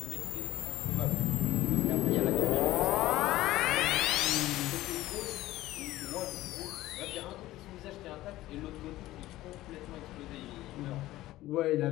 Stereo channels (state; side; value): quieter; right; 16.3 dB